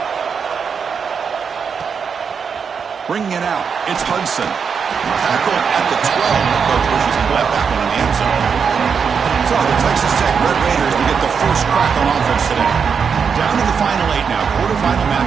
Bringing it out, it's Hudson. Tackle at the 12. The coach wishes he left that one in the end zone. So the Texas Tech Red Raiders will get the first crack on offense today. Down to the final 8 now. Quarterfinal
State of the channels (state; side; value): quieter; left; 6.3 dB